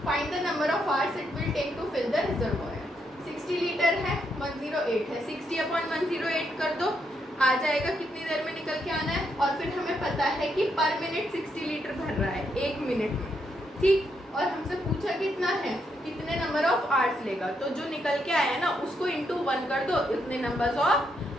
find the number of hours it will take to fill the reservoir. 60 litre है, 108 है, 60/108 कर दो, आ जाएगा कितनी देर में निकल के आना है। और फिर हमें पता है कि पर मिनट 60 लीटर भर रहा है 1 मिनट में, ठीक। और हमसे पूछा कितना है, कितने नंबर ऑफ आवर्स लेगा, तो जो निकल के आया ना उसको इंटू 1 कर दो, इतने नंबर्स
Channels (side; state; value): both; normal; correlation 0.78